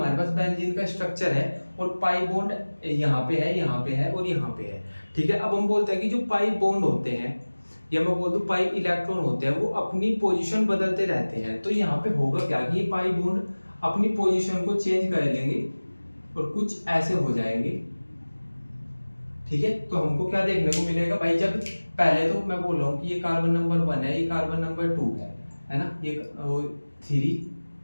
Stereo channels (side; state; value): both; inverted; correlation -1.00